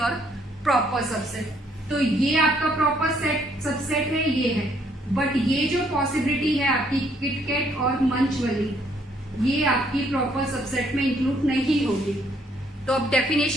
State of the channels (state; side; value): normal; both; correlation 0.68